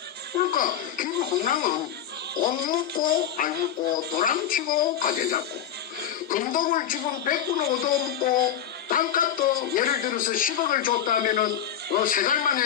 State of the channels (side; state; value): right; quieter; 9.7 dB